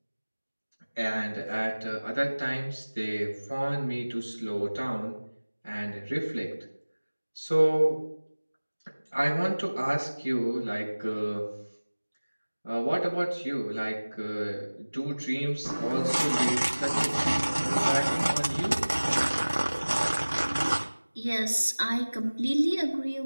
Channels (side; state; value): both; inverted; correlation -1.00